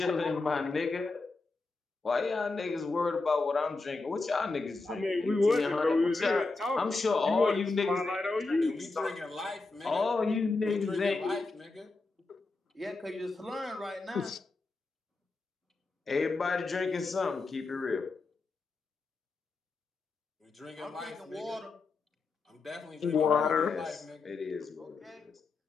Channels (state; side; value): quieter; right; 3.7 dB